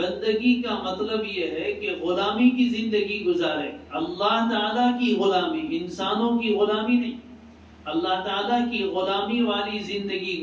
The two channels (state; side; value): identical; both; correlation 1.00